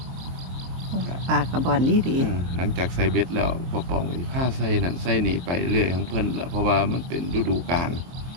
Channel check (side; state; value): left; late; 23 ms